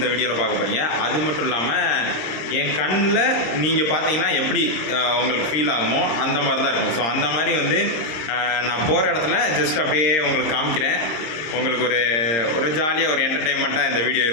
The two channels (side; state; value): right; late; 26 ms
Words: வீடியோவில் பார்க்க போகிறீங்க. அது மட்டும் இல்லாமல் என் கண்ணில் நீங்கள் பார்த்தீங்கன்னா எப்படி உங்களுக்கு ஃபீல் ஆகுமோ அந்த மாதிரி தான் இருக்கும். ஸோ அந்த மாதிரி வந்து நான் போகிற இடத்துல ஜஸ்ட் அப்படியே உங்களுக்கு காமிக்கிறேன். உங்களுக்கு ஒரு ஜாலியாக ஒரு என்டர்டெயின்மெண்ட்டாக இந்த வீடியோ